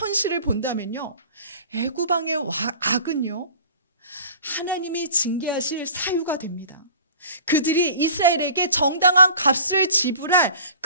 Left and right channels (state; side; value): inverted; both; correlation -0.44